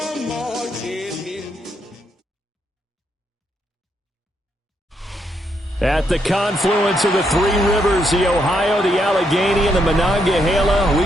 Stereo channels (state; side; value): normal; both; correlation 0.77